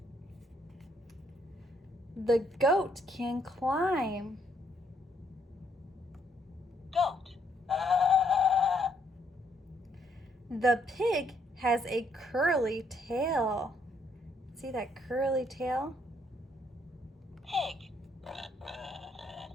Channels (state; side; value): normal; both; correlation 0.71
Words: The goat can climb. Goat. The pig has a curly tail. See that curly tail? Pig.